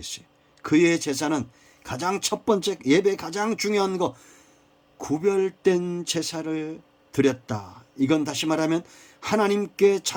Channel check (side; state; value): both; identical; correlation 1.00